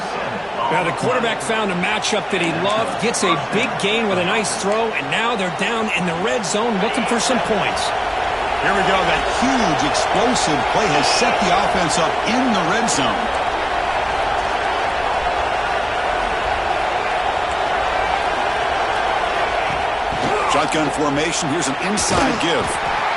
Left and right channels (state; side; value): identical; both; correlation 1.00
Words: Now the quarterback found a matchup that he loved, gets a big gain with a nice throw, and now they're down in the red zone looking for some points. Here we go. That huge explosive play has set the offense up in the red zone. Shotgun formation. Here's an inside give.